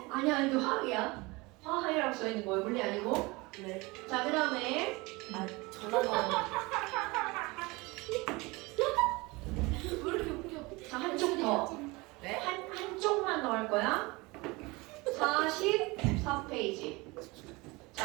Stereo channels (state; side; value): quieter; left; 24.0 dB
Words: 이거 화학이야. 화학이라고 써 있는 거예요. 물리 아니고. 네. 자, 그다음에 아, 전화가 왜 이렇게 웃겨? 자, 한쪽 더. 네? 한쪽만 더 할 거야. 44페이지.